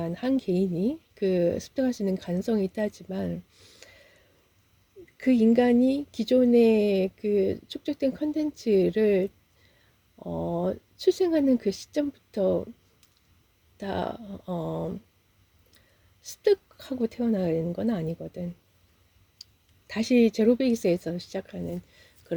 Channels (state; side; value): identical; both; correlation 1.00